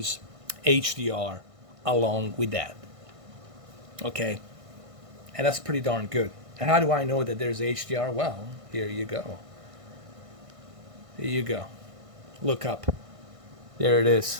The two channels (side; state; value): left; late; 1.6 ms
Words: HDR along with that. Okay, and that's pretty darn good. And how do I know that there's HDR? Well, here you go. Here you go. Look up. There it